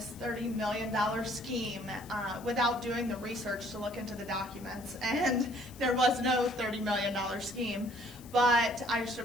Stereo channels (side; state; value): left; noise; hiss, 21 dB below the sound